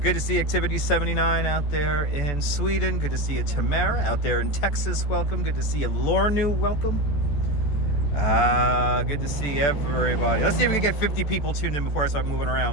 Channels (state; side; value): late; right; 14 ms